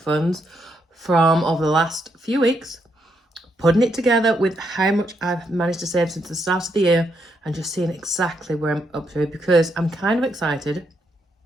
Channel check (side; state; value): both; normal; correlation 0.77